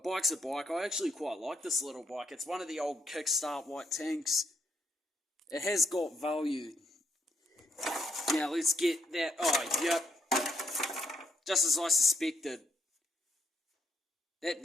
a bike. I actually quite like this little bike. It's one of the old Kickstart white tanks. It has got value. Now let's get that. Oh, yep. Just as I suspected. That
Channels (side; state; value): both; normal; correlation 0.74